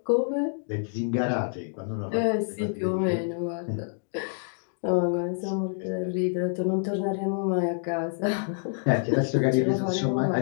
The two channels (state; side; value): silent; right; digital silence